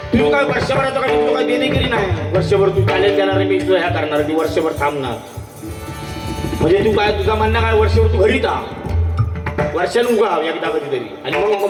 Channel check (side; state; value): both; identical; correlation 1.00